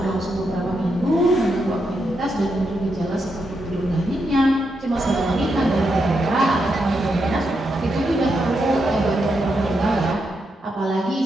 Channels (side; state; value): both; normal; correlation 0.83